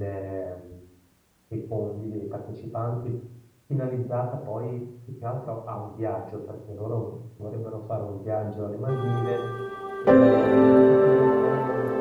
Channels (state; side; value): identical; both; correlation 1.00